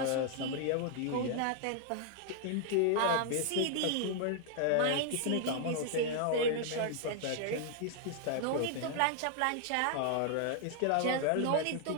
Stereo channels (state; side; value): different; both; correlation 0.00